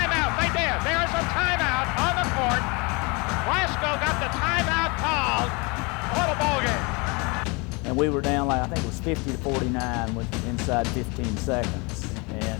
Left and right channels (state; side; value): quieter; right; 28.9 dB